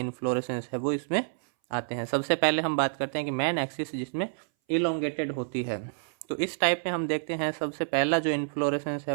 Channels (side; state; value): left; silent; 59 dB below the other